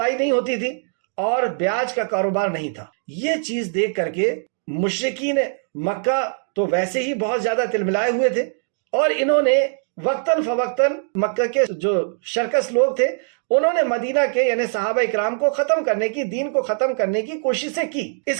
نہیں ہوتی تھی، اور بیاج کا کاروبار نہیں تھا۔ یہ چیز دیکھ کر کے مشرکین مکہ تو ویسے ہی بہت زیادہ تلملائے ہوئے تھے، اور انہوں نے وقتاً فوقتاً مکہ کے جو شرکس لوگ تھے انہوں نے مدینہ کے یعنی صحابہ اکرام کو ختم کرنے کی، دین کو ختم کرنے کی کوششیں کی۔ اس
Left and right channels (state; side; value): silent; left; digital silence